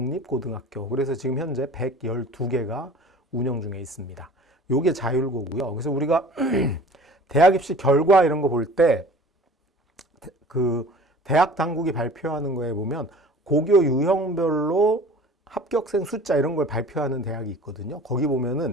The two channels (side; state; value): both; normal; correlation 0.44